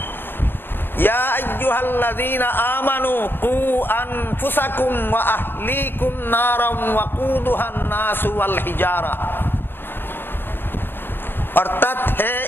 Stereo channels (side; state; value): right; late; 0.099 ms